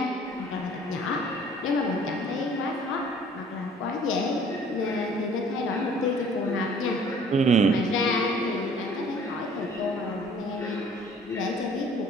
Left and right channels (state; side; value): normal; both; correlation 0.53